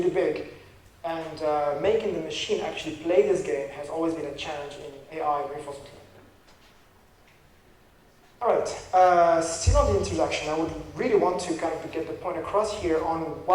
big, and making the machine actually play this game has always been a challenge in AI reinforcement learning. All right, still on the introduction, I would really want to kind of get the point across here on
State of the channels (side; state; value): both; identical; correlation 1.00